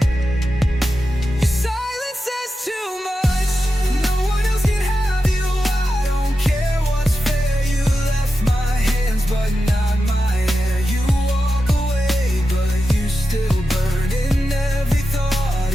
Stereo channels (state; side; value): normal; both; correlation 0.91